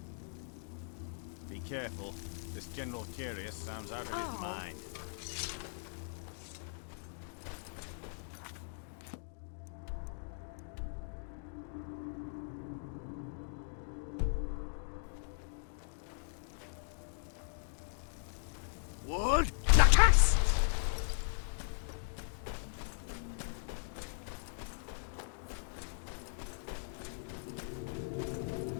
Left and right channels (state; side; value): silent; right; digital silence